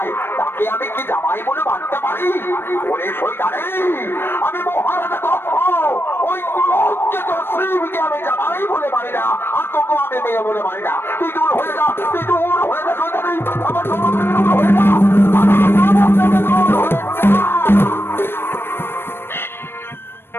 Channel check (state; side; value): late; right; 0.11 ms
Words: তাকে আমি কি জামাই বলে মানতে পারি? ওরে শয়তানে, আমি মহারাজা দক্ষ, ওই কুলজ্জিত শিবকে আমি জামাই বলে মানি না, আর তোকে আমি মেয়ে বলে মানি না। তুই দূর হয়ে যা, তুই দূর হয়ে যা শয়তানি, আমার দূর হয়ে যা, আমার দূর হয়ে যা।